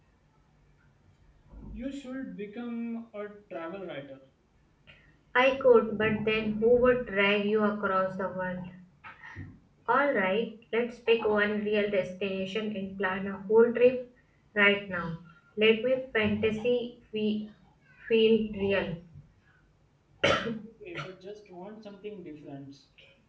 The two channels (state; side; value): identical; both; correlation 1.00